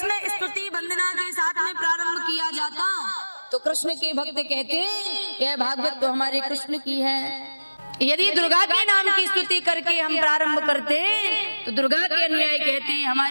स्तुति वंदना के साथ में प्रारंभ किया जाता तो कृष्ण के भक्त कहते यह भागवत तो हमारे कृष्ण की है। यदि दुर्गा के नाम की स्तुति करके हम प्रारंभ करते तो दुर्गा के अनुयायी कहते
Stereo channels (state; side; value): inverted; both; correlation -1.00